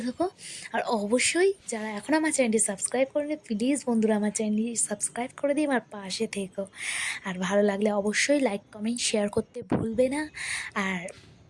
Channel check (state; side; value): identical; both; correlation 1.00